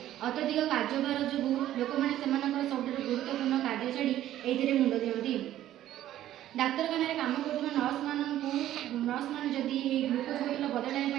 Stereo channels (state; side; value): quieter; left; 12.9 dB